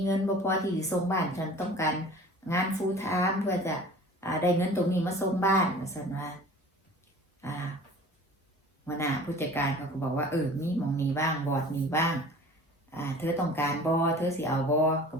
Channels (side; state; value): both; normal; correlation 0.44